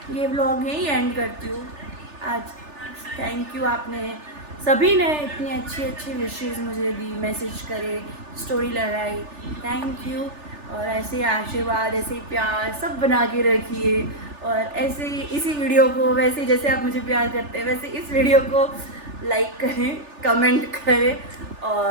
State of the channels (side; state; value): left; late; 3.4 ms